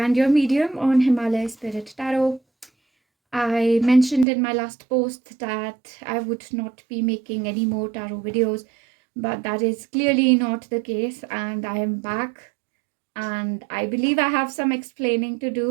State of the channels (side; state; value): left; drops out; at 4.2 s